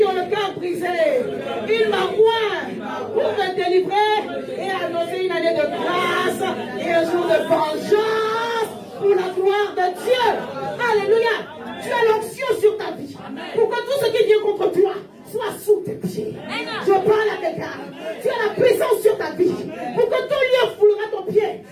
ont le cœur brisé. Il m'a oint pour me délivrer et annoncer une année de grâce et un jour de vengeance pour la gloire de Dieu. Alléluia. Tu as l'onction sur ta vie pour que tout ce qui vient contre toi soit sous tes pieds. Je parle à quelqu'un. Tu as la puissance sur ta vie pour que tout lieu foulera ton pied.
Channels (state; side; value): identical; both; correlation 1.00